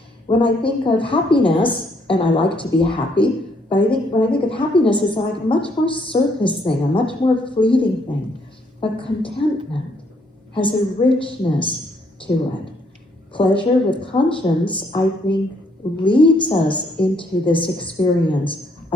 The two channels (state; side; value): normal; both; correlation 0.70